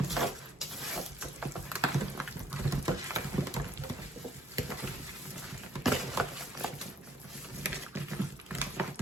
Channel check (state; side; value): normal; both; correlation 0.61